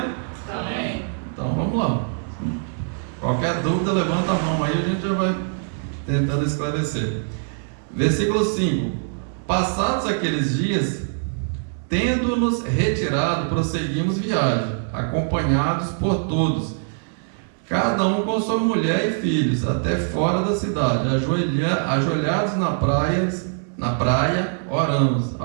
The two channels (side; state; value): left; silent; digital silence